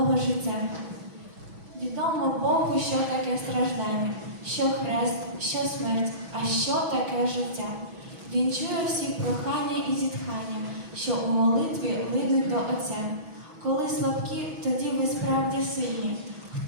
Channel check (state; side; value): late; left; 6.1 ms